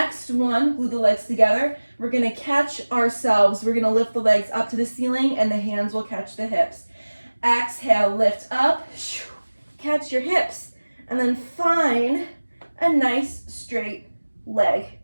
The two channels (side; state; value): both; inverted; correlation -1.00